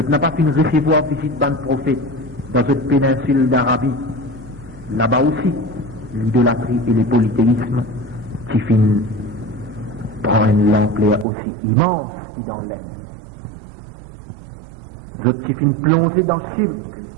n'ai pas fini de recevoir visite d'un prophète dans cette péninsule d'Arabie. Là-bas aussi, l'idolâtrie et le polythéisme qui finissent prendre une ampleur aussi immense que dans l'air. Je suis fini plongé dans le cirque,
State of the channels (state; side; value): drops out; left; at 11.2 s